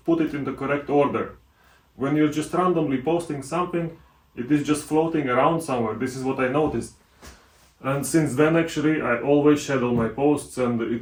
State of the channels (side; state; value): both; identical; correlation 1.00